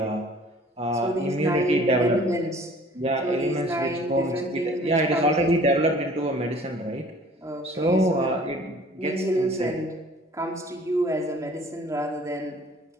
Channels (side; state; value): both; normal; correlation 0.51